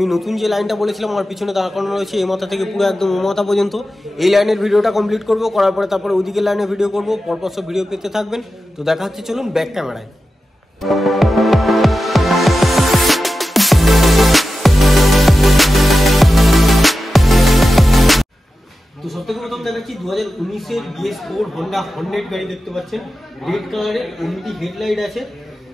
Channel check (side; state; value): both; normal; correlation 0.93